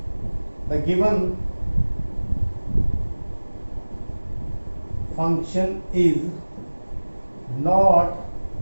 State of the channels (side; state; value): both; inverted; correlation -1.00